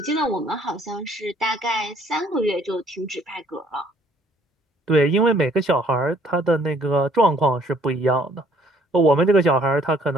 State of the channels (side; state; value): both; normal; correlation 0.62